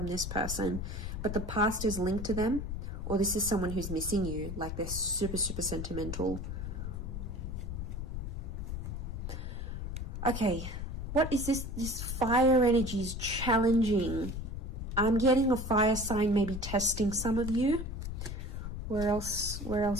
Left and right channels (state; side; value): noise; left; rumble, 5 dB below the sound